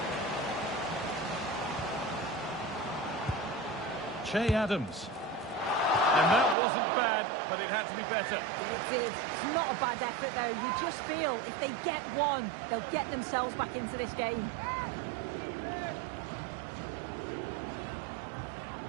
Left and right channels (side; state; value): left; drops out; at 6.6 s